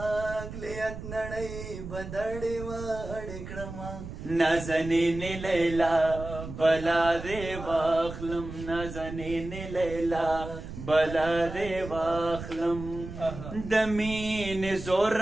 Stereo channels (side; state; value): right; noise; rumble, 10 dB below the sound